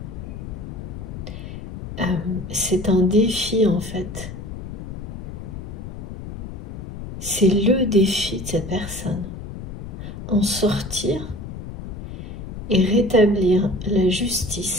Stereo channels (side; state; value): left; noise; rumble, 9 dB below the sound